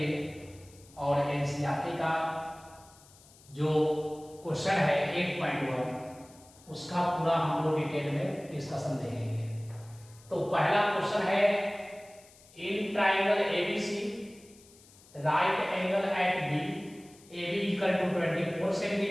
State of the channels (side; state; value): left; noise; hiss, 25 dB below the sound